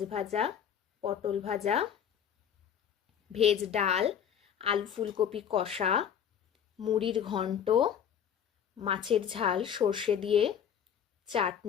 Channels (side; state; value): right; quieter; 8.7 dB